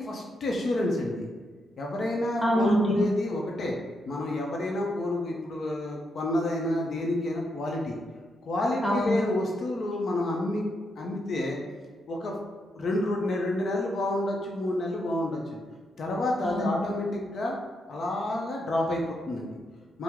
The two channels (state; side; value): normal; both; correlation 0.81